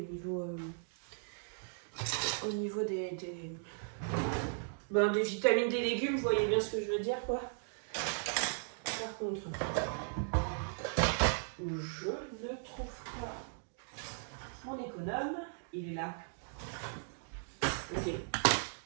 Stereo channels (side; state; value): left; silent; digital silence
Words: au niveau des vitamines des légumes. Vous voyez bien ce que je veux dire, quoi. Par contre, je ne trouve pas mon économe. il est là. Ok.